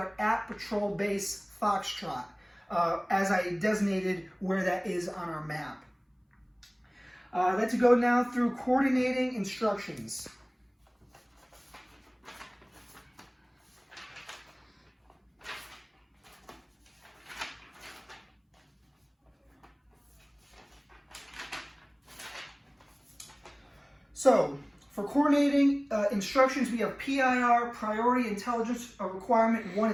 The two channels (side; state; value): both; identical; correlation 1.00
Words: at Patrol Base Foxtrot, as I designated where that is on our map. Let's go now through coordinating instructions. So, for coordinating instructions, we have PIR, Priority Intelligence Requirement 1